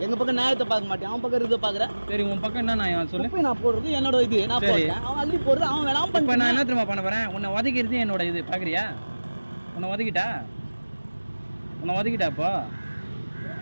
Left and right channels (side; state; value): both; inverted; correlation -1.00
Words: எங்கள் பக்கம் நியாயத்தை பார்க்க மாட்டேன். அவன் பக்கம் இதை பார்க்குறேன். சரி உன் பக்கம் என்ன நான் சொல்லு. இப்போ நான் போடுறது என்னோட இது. நான் போடுறேன். அவன் அள்ளி போடுறது அவன் வேணாம். இப்போ நான் என்ன திரும்ப பண்ண போகிறேன்? உன்னை உதைக்கிறது என்னோட இது. பார்க்குறியா? உன்னை உதைக்கிட்டாப்போ